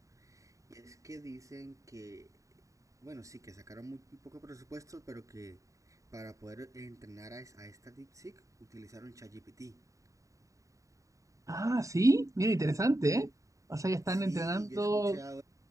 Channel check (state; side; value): late; left; 0.16 ms